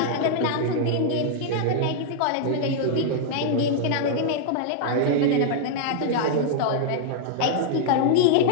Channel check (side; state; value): both; different; correlation -0.01